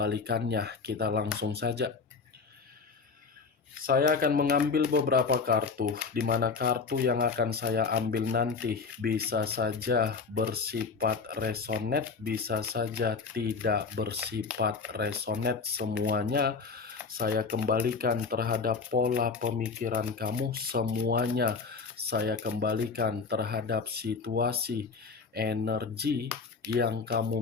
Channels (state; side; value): quieter; right; 4.9 dB